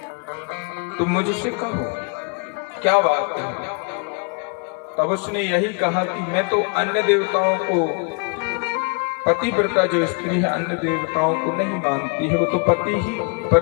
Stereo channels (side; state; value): right; quieter; 35.0 dB